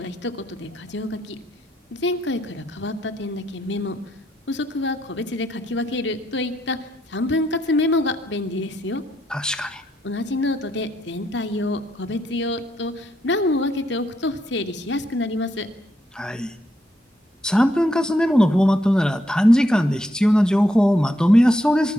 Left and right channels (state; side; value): normal; both; correlation 0.77